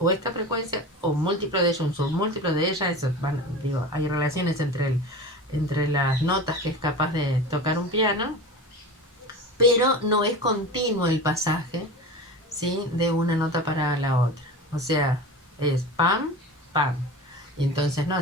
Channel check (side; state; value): both; normal; correlation 0.31